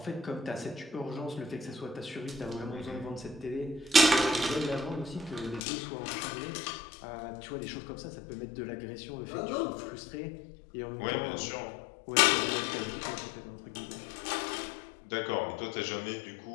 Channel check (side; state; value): right; drops out; at 5.6 s